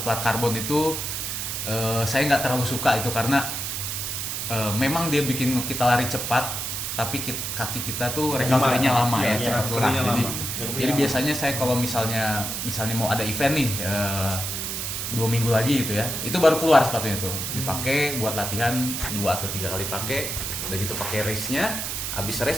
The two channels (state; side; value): noise; right; hiss, 3 dB below the sound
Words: plat karbon itu saya nggak terlalu suka itu karena memang dia bikin kita lari cepat, tapi kaki kita tuh recovery-nya lama ya, cepat lelah. Jadi biasanya saya kalau misalnya mau ada event nih 2 minggu lagi gitu ya, itu baru keluar sepatunya tuh, dipakai buat latihan 2 atau 3 kali pakai, udah gitu pakai race-nya, habis race